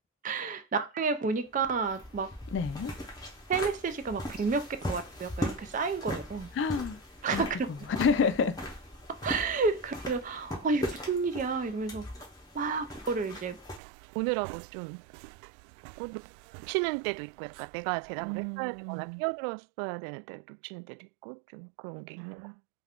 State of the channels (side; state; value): left; drops out; at 13.8 s